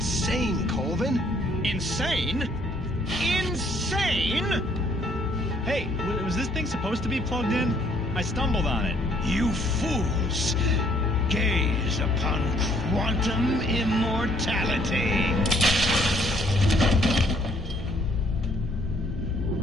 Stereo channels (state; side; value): normal; both; correlation 0.64